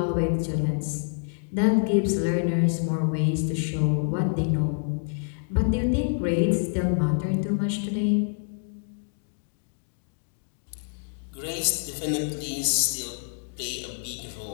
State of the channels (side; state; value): right; silent; digital silence